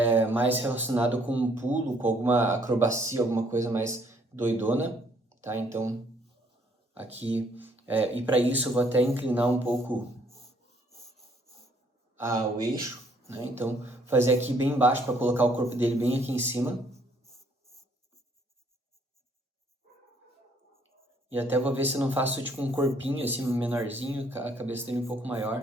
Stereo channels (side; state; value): both; normal; correlation 0.65